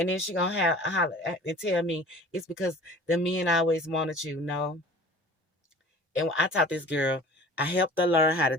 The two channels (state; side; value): normal; both; correlation 0.44